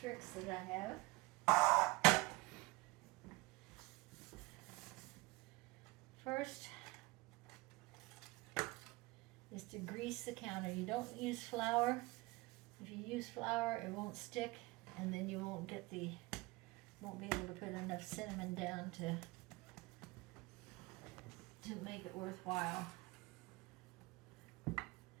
that I have. First is to grease the counter. You don't use flour. If you use flour, it won't stick, and then you won't get won't be able to put enough cinnamon down to make it worthwhile.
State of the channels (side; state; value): left; quieter; 22.4 dB